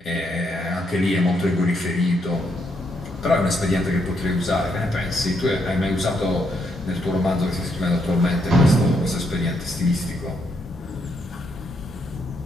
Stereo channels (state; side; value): normal; both; correlation 0.76